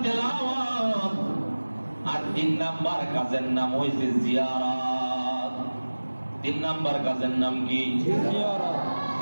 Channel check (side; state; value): both; inverted; correlation -1.00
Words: তেলাওয়াত, আর 3 নাম্বার কাজের নাম হইছে জিয়ারত। 3 নাম্বার কাজের নাম কি? জিয়ারত।